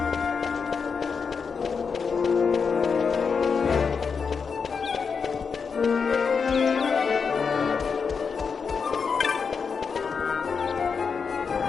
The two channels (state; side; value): quieter; right; 5.7 dB